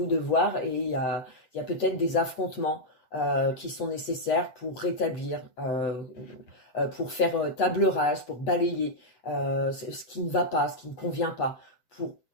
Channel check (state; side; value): late; right; 7.8 ms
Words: de voir, et il y a peut-être des affrontements qui sont nécessaires pour rétablir, pour faire table rase, pour balayer ce qui ne va pas, ce qui ne convient pas, pour